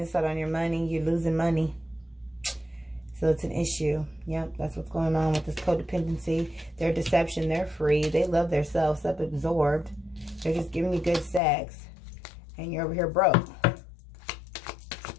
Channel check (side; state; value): right; drops out; at 11.4 s